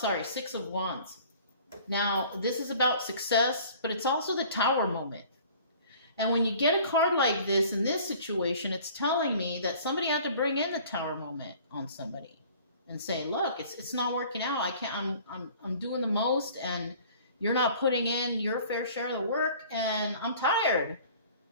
6 of Wands. Now, this is about success, but it's also the Tower moment. And when you get a card like this in this situation, it's telling me that somebody had to bring in the Tower moment on somebody and say, look, it's not working out. I'm doing the most, and you're not putting in your fair share of the work, and I'm tired.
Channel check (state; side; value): inverted; both; correlation -0.49